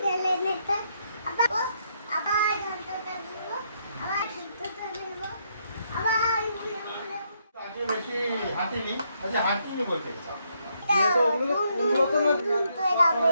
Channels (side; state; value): both; inverted; correlation -0.75